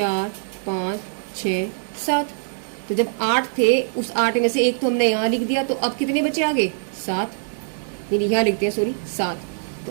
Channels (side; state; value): left; silent; digital silence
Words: 5 6 7। तो जब 8 थे, उस 8 में से एक तो हमने यहाँ लिख दिया, तो अब कितने बचे आगे, 7, यानी यहाँ लिखते हैं, सॉरी 7।